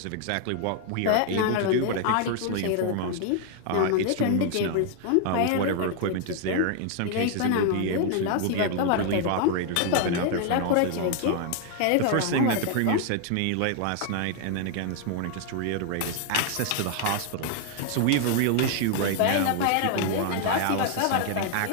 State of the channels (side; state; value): both; different; correlation 0.00